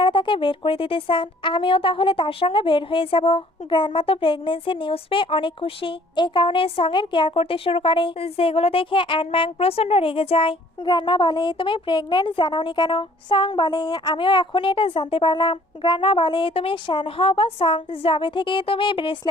তাকে বের করে দিতে চান আমিও তাহলে তার সঙ্গে বের হয়ে যাব। গ্র্যান্ডমা তো প্রেগনেন্সির নিউজ পেয়ে অনেক খুশি, এই কারণে সঙ্গের কেয়ার করতে শুরু করে, যেগুলো দেখে অ্যানম্যাং প্রচন্ড রেগে যায়। গ্র্যান্ডমা বলে তুমি প্রেগনেন্ট জানাওনি কেন? সং বলে আমিও এখনই এটা জানতে পারলাম। গ্র্যান্ডমা বলে তুমি শ্যান হও বা সং, যবে থেকে তুমি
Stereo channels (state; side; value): normal; both; correlation 0.57